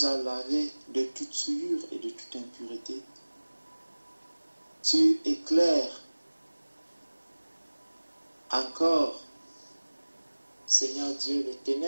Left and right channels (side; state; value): both; inverted; correlation -1.00